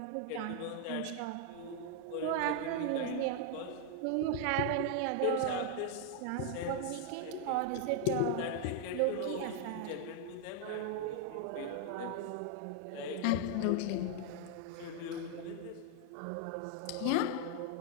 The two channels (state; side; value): different; both; correlation 0.00